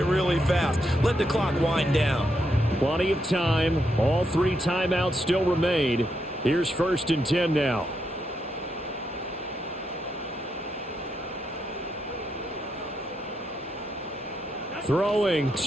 really fast. Let the clock wind down. Plenty of time. All 3 timeouts still remain. Here's 1st and 10 now. Throwing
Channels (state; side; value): normal; both; correlation 0.81